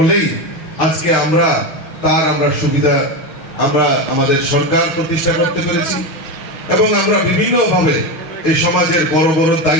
আজকে আমরা সুবিধা আমরা আমাদের সরকার প্রতিষ্ঠা করতে পেরেছি এবং আমরা বিভিন্নভাবে এই সমাজের বড় বড়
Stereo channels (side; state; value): right; late; 6.2 ms